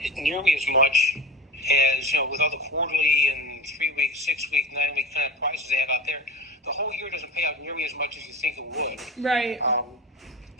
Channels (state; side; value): normal; both; correlation 0.32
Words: nearly as much as with all the quarterly and 3-week, 6-week, 9-week kind of prizes they have out there. The whole year doesn't pay out nearly as much as you think it would. Right. And